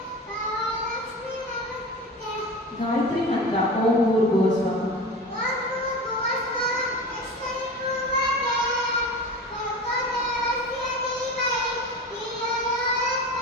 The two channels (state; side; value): normal; both; correlation 0.31